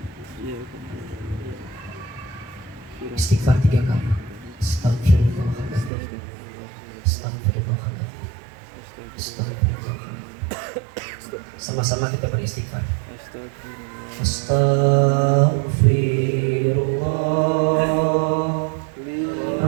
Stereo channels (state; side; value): drops out; left; at 5.9 s